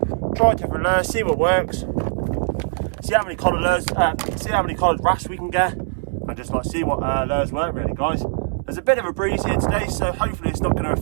try different lures, see what works, see how many coloured lures, see how many coloured wrasse we can get, and just like see what lures work really, guys. There's a bit of a breeze here today, so hopefully it's not going to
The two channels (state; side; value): silent; left; digital silence